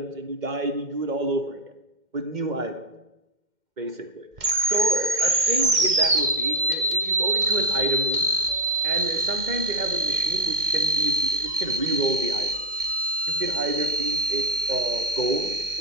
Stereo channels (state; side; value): late; left; 2.1 ms